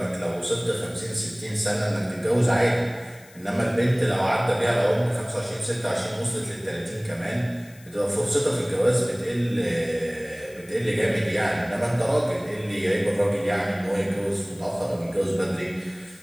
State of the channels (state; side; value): noise; left; hiss, 24 dB below the sound